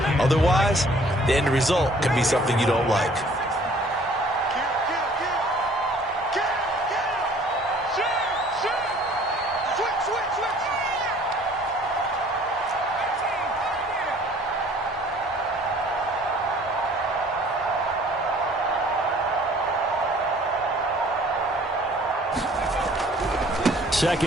Otherwise, the end result can be something you don't like.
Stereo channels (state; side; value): normal; both; correlation 0.55